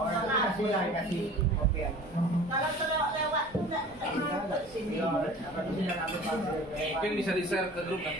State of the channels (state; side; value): normal; both; correlation 0.43